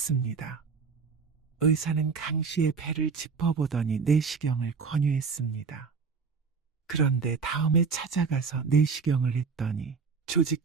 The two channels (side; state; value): left; quieter; 5.2 dB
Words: 의사는 강 씨의 배를 짚어보더니 내시경을 권유했습니다. 그런데 다음에 찾아가서 내시경을 했더니 조직